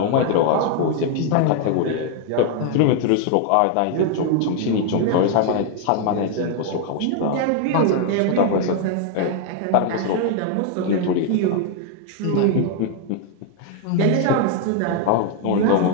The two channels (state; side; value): different; both; correlation 0.00